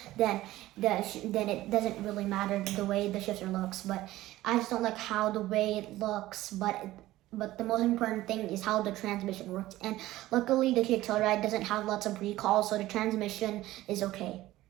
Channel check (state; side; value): quieter; left; 16.2 dB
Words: then it doesn't really matter the way the shifter looks. But I just don't like how the way it looks. But the most important thing is how the transmission works. And luckily, the Kia Telluride doesn't have lots of recalls, so the transmission is okay.